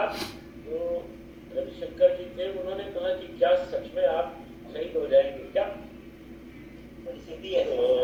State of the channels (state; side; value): identical; both; correlation 1.00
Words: जो रविशंकर जी थे उन्होंने कहा कि क्या सच में आप शहीद हो जाएंगे क्या? तो